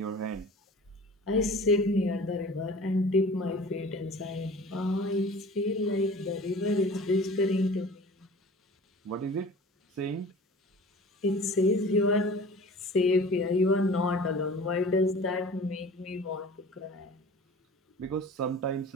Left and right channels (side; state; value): both; normal; correlation 0.42